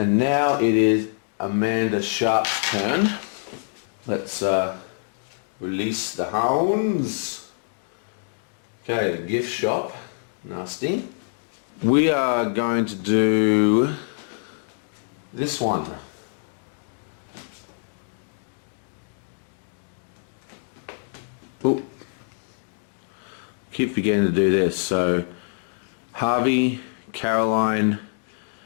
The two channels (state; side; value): silent; right; digital silence